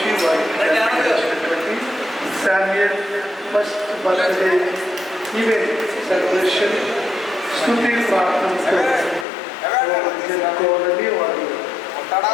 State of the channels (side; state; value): right; drops out; at 9.2 s